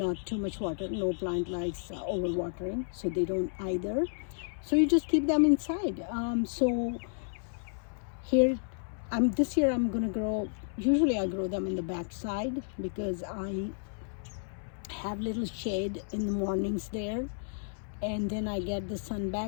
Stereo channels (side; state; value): right; silent; 57 dB below the other